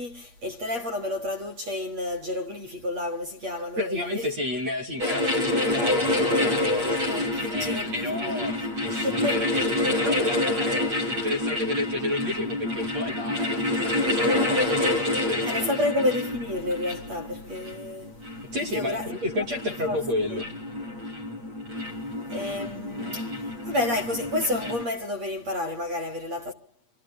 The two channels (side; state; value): left; late; 8.5 ms